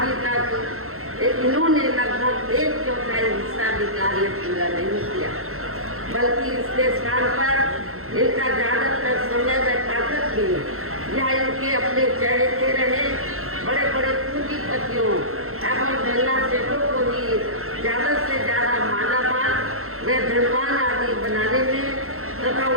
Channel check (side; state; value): left; late; 0.62 ms